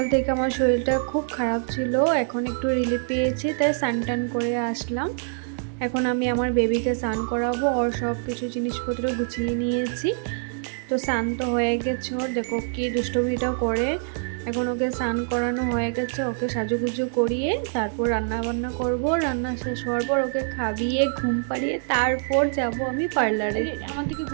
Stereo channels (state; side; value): silent; left; digital silence